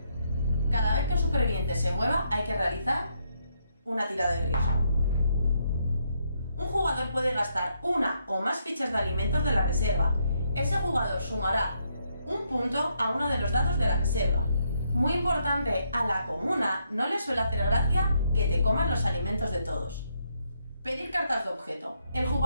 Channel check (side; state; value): both; inverted; correlation -0.76